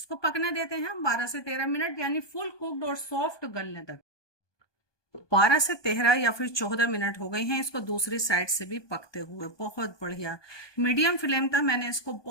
पकने देते हैं हम 12 से 13 मिनट, यानी फुल कुक्ड और सॉफ्ट गलने तक। 12 से 13 या फिर 14 मिनट हो गए हैं इसको दूसरी साइड से भी पकते हुए। बहुत बढ़िया मीडियम फ्लेम था, मैंने इसको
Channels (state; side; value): late; right; 1.2 ms